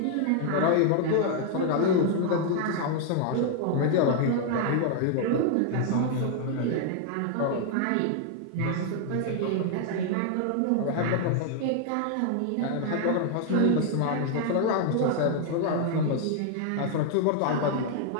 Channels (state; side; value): different; both; correlation 0.00